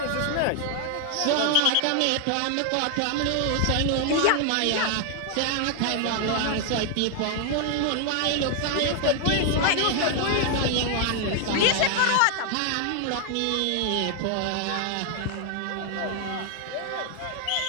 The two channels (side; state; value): both; different; correlation 0.00